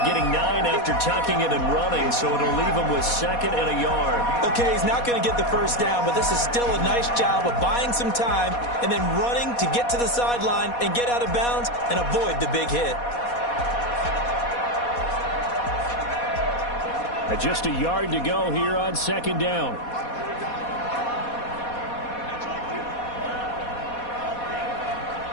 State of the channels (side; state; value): right; late; 4.2 ms